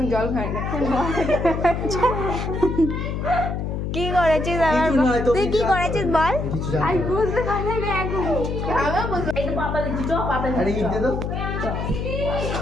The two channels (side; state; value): left; noise; hum, 3 dB below the sound